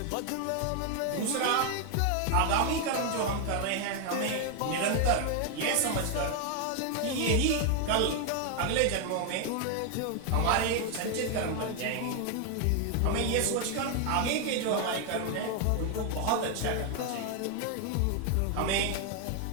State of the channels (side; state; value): both; different; correlation 0.01